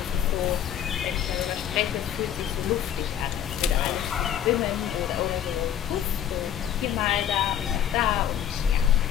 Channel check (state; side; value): quieter; right; 10.1 dB